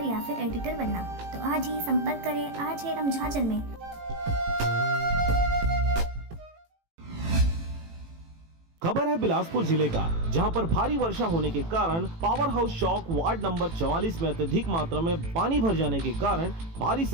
या फिर एडिटर बनना, तो आज ही संपर्क करें आज है रमझाझर में। खबर है बिलासपुर जिले का, जहां पर भारी वर्षा होने के कारण पावर हाउस चौक वार्ड नंबर 44 में अत्यधिक मात्रा में पानी भर जाने के कारण भारी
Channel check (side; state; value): left; late; 18 ms